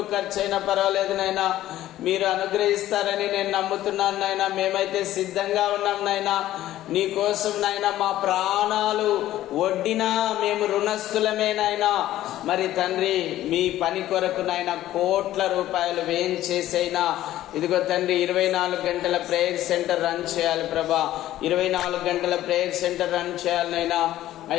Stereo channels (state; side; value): quieter; right; 13.9 dB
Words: ఖర్చు అయినా పర్వాలేదు నైనా, మీరు అనుగ్రహిస్తారని నేను నమ్ముతున్నాను నైనా. మేమైతే సిద్ధంగా ఉన్నాం నైనా. నీకోసం నైనా మా ప్రాణాలు వడ్డినా మేము రుణస్థులమేనైనా. మరి తండ్రి మీ పని కొరకు నైనా కోట్ల రూపాయలు వ్యయం చేసైనా ఇదిగో తండ్రి 24 గంటల ప్రేయర్ సెంటర్ రన్ చేయాలి ప్రభా. 24 గంటల ప్రేయర్ సెంటర్ రన్ చేయాలనైనా.